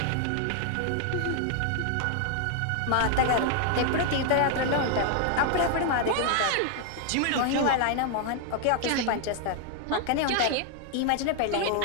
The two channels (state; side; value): different; both; correlation 0.00